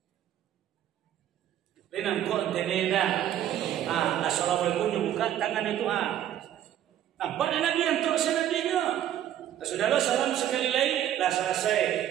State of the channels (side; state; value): left; quieter; 11.4 dB